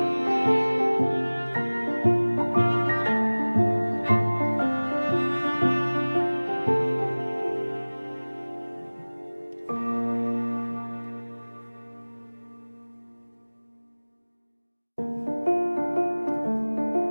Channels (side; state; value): both; inverted; correlation -1.00